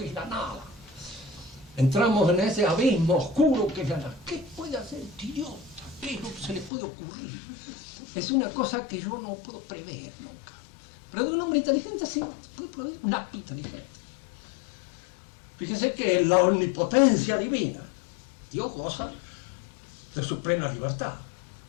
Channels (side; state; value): right; drops out; at 6.7 s